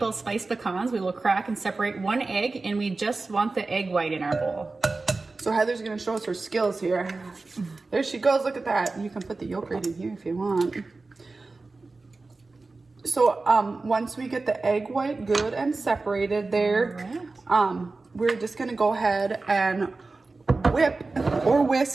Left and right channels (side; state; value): left; quieter; 3.6 dB